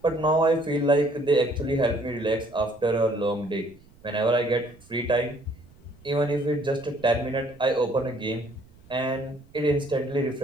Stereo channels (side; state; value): right; noise; rumble, 26 dB below the sound